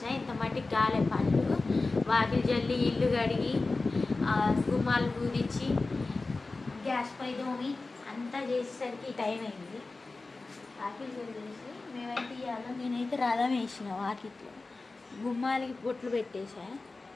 ఇంత మట్టికి గాలే పళ్ళు వాకిలి జల్లి ఇల్లు కడిగి గుమ్మాలు పూరించి గ్యాస్ పై దోమి అంతా చేసేసరికి టైం అయింది. వాకిలి జల్లేసి మేమైతే ఇవాళ నేనైతే రథం వేసిన వాకిట్లో, గుమ్మాలకి బొట్లు పెట్టేసా,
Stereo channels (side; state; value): right; quieter; 3.5 dB